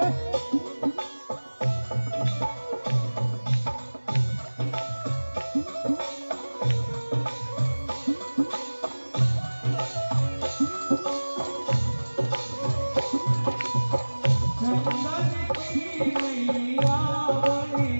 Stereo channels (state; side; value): inverted; both; correlation -1.00